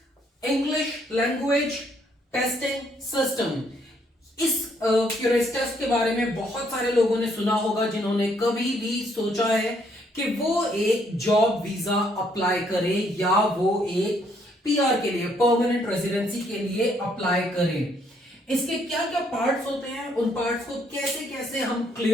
English language testing system. इस टेस्ट के बारे में बहुत सारे लोगों ने सुना होगा जिन्होंने कभी भी सोचा है कि वो एक जॉब वीजा अप्लाई करे या वो एक पीआर के लिए, परमानेंट रेजिडेंसी के लिए अप्लाई करें। इसके क्या क्या पार्ट्स होते हैं, उन पार्ट्स को कैसे कैसे हम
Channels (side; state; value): both; normal; correlation 0.70